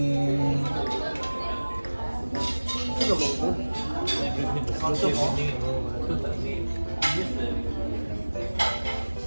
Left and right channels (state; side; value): inverted; both; correlation -1.00